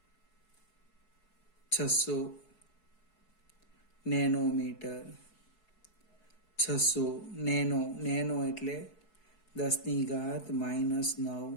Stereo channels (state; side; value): late; right; 4.7 ms